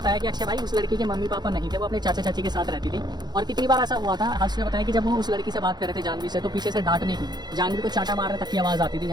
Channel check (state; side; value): late; left; 0.20 ms